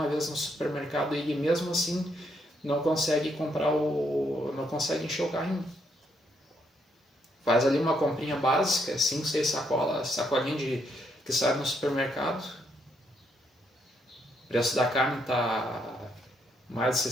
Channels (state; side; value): normal; both; correlation 0.75